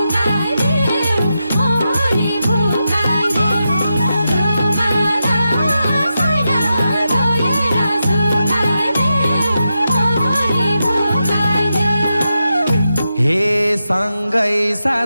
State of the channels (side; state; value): both; inverted; correlation -0.88